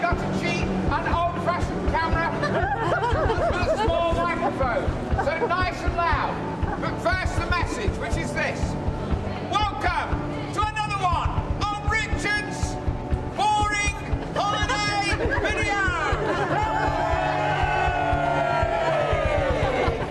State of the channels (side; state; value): both; identical; correlation 1.00